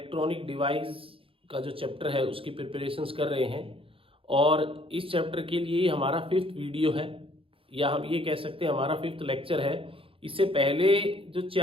डिवाइस का जो चैप्टर है उसकी प्रिपरेशंस कर रहे हैं। और इस चैप्टर के लिए हमारा 5th वीडियो है, या हम ये कह सकते हैं हमारा 5th लेक्चर है। इससे पहले जो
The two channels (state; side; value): late; left; 0.26 ms